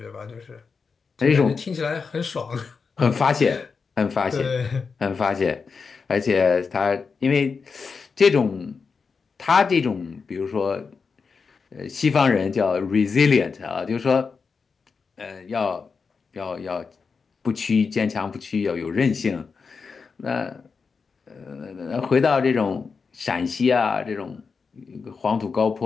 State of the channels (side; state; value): right; quieter; 5.2 dB